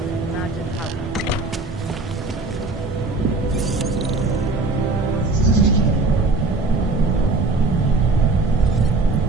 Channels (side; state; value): left; quieter; 3.4 dB